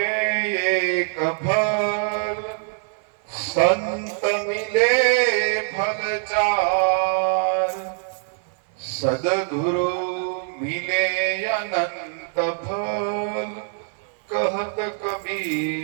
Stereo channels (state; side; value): silent; left; 63 dB below the other